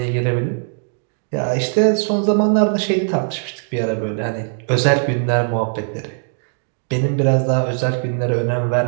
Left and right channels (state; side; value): silent; left; digital silence